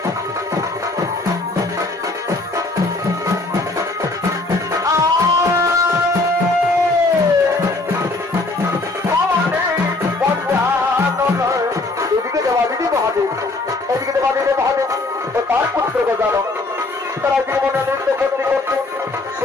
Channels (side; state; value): right; quieter; 3.1 dB